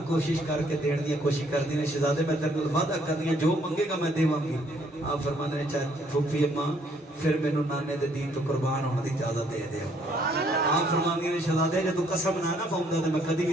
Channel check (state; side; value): normal; both; correlation 0.66